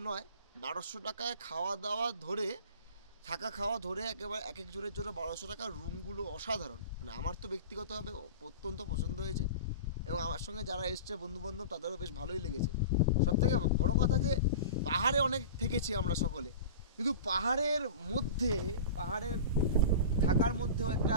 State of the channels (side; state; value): both; inverted; correlation -0.33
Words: নয়। 1200 টাকায় খাওয়া দাওয়া ধরে, থাকা খাওয়া ধরে একেবারে এক এক জনের জন্য 1200 টাকার রুমগুলো অসাধারণ। মানে আমার তো ব্যক্তিগতভাবে অত্যন্ত পছন্দ হয়েছে, এবং আমার সঙ্গে যারা এসছে বন্ধুবান্ধব তাদেরও বেশ ভালোই লেগেছে। সবথেকে বড় কথা যে পাহাড়ে অনেক থেকেছি আমরা সকলে, কিন্তু পাহাড়ের মধ্যে, পাহাড়ের থাকার মধ্যেও একটা